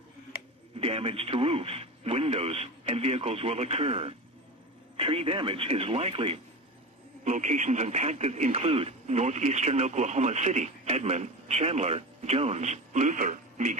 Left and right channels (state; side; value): normal; both; correlation 0.27